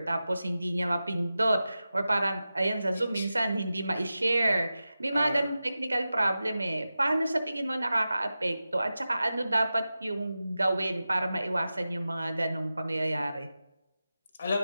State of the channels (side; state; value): both; inverted; correlation -0.93